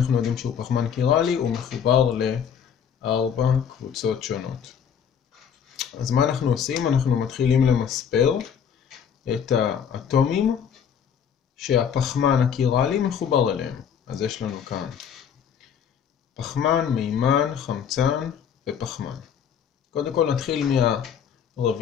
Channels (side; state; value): right; quieter; 7.8 dB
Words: יודעים שהוא פחמן קירלי? הוא מחובר ל4 קבוצות שונות. אז מה אנחנו עושים? אנחנו מתחילים למספר את האטומים שהפחמן הקירלי מחובר אליהם. אז יש לנו כאן פחמן, מימן, חמצן ופחמן. קודם כל נתחיל